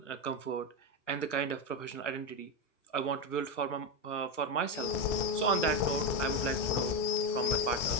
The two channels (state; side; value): late; right; 1.0 ms